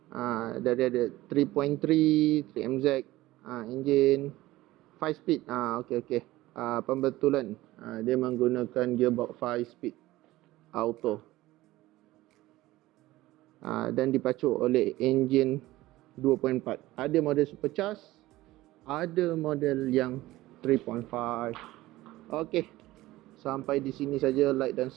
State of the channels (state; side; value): quieter; left; 17.4 dB